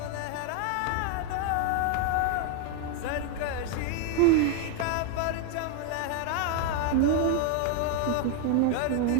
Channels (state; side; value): different; both; correlation 0.01